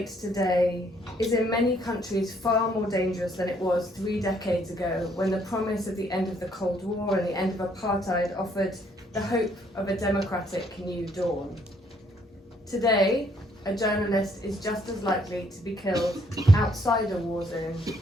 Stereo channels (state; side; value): normal; both; correlation 0.67